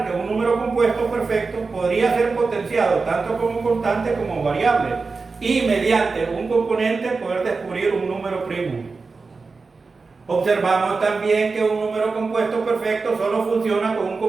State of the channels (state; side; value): quieter; left; 4.3 dB